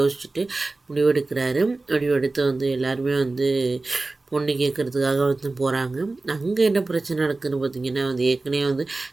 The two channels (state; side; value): quieter; left; 3.4 dB